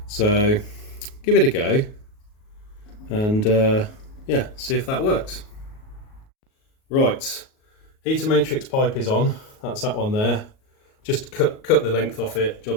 So give it a go and yeah, see if that works. Right, heater matrix pipe is on. That's that one there. Just cut the length off it.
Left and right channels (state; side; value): late; right; 38 ms